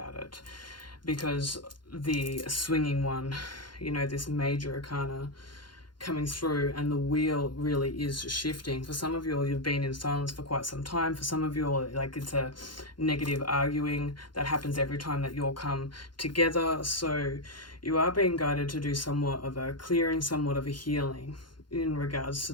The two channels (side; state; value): right; late; 0.71 ms